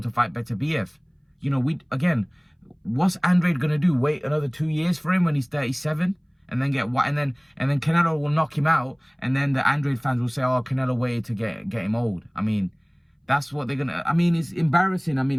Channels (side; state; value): both; identical; correlation 1.00